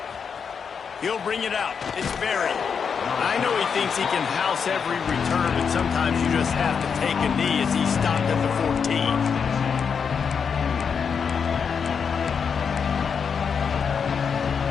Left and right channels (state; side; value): quieter; right; 6.4 dB